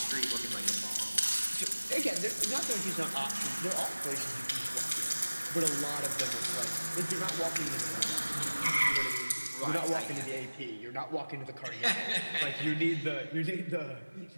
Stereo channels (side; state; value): both; inverted; correlation -1.00